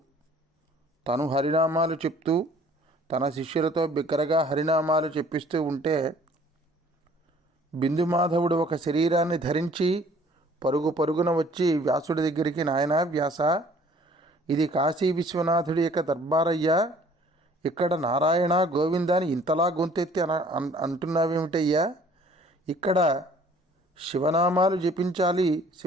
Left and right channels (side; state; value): both; normal; correlation 0.55